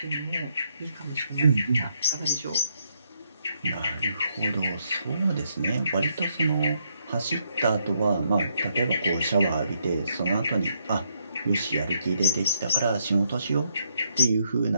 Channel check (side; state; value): both; inverted; correlation -0.75